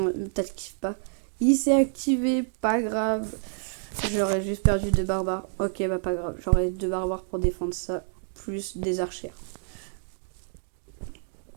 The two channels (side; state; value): left; silent; digital silence